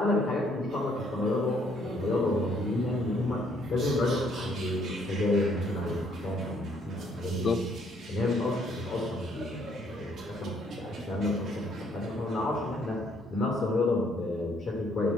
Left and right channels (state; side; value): normal; both; correlation 0.66